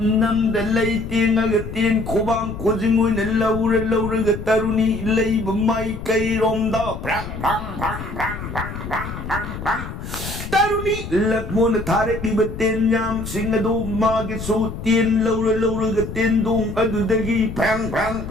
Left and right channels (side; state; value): left; noise; rumble, 8 dB below the sound